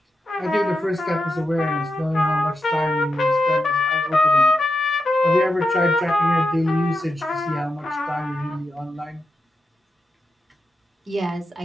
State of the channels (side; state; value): both; normal; correlation 0.87